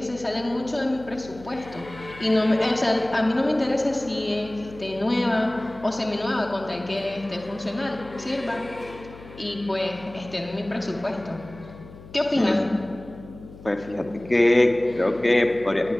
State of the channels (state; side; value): noise; left; hum, 18 dB below the sound